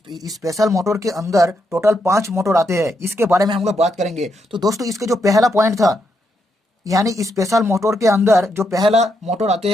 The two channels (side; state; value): both; normal; correlation 0.80